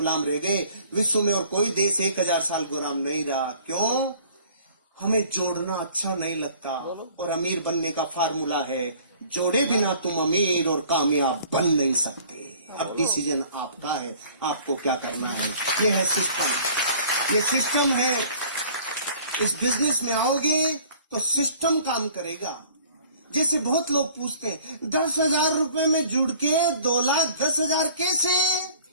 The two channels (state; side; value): inverted; both; correlation -0.52